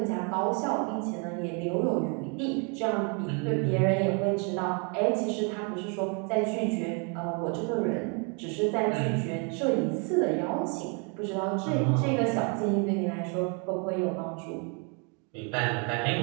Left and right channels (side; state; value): left; quieter; 35.9 dB